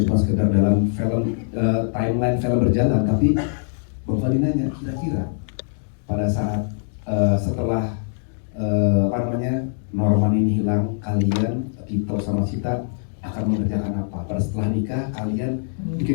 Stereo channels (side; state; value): right; silent; digital silence